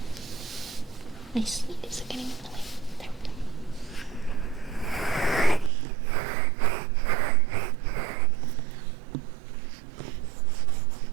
My sleeves are getting in the way. There we go.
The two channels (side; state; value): left; drops out; at 5.7 s